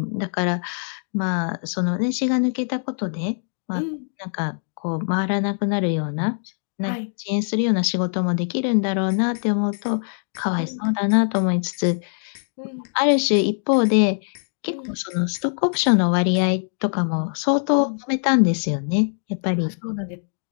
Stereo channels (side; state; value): right; silent; digital silence